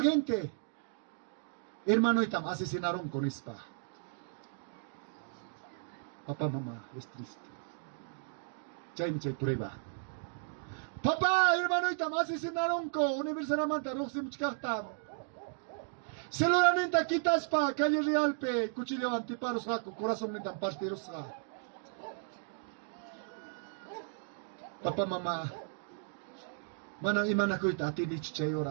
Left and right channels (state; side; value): silent; left; digital silence